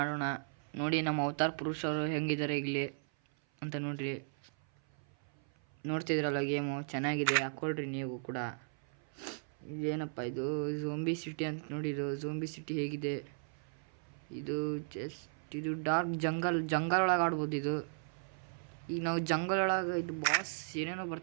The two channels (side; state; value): left; silent; 54 dB below the other